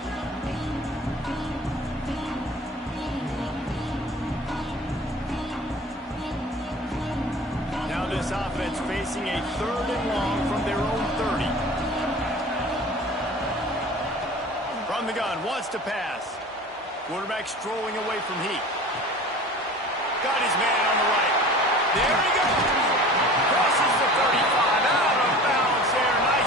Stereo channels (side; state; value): both; normal; correlation 0.41